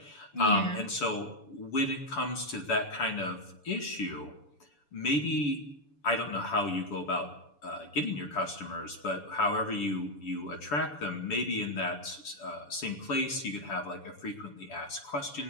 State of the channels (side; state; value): right; late; 7.0 ms